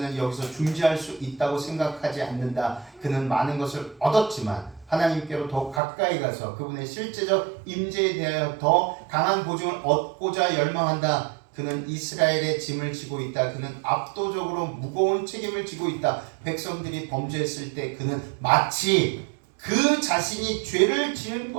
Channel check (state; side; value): drops out; left; at 5.8 s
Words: 여기서 중지할 수 있다고 생각하지 않는다. 그는 많은 것을 얻었지만 하나님께로 더 가까이 가서 그분의 실제적 임재에 대하여 더 강한 보증을 얻고자 열망한다. 그는 이스라엘의 짐을 지고 있다. 그는 압도적으로 무거운 책임을 지고 있다. 백성들이 범죄했을 때 그는 마치 그 자신이 죄를 지은